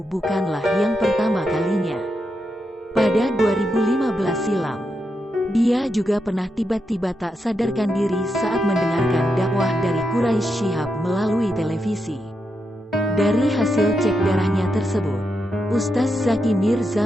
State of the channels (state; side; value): normal; both; correlation 0.84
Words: bukanlah yang pertama kalinya. Pada 2015 silam, dia juga pernah tiba-tiba tak sadarkan diri saat mendengarkan dakwah dari Quraisy Shihab melalui televisi. Dari hasil cek darahnya tersebut, Ustaz Zaki